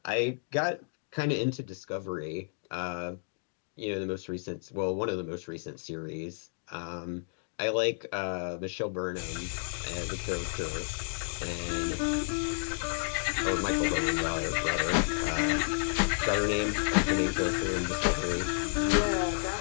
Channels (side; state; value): right; silent; digital silence